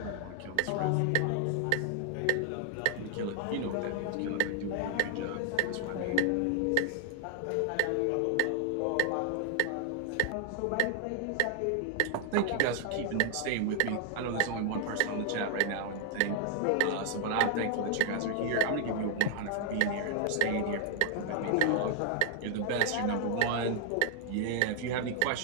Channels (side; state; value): both; different; correlation 0.00